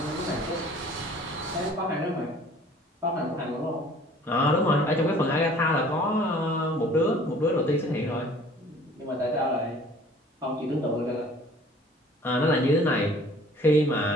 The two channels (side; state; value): both; normal; correlation 0.51